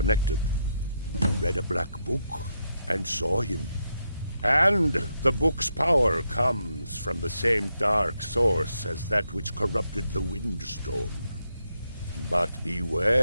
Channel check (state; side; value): inverted; both; correlation -0.81